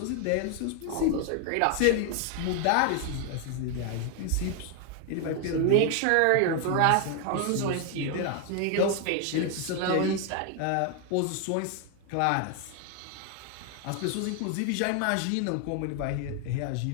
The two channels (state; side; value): different; both; correlation 0.00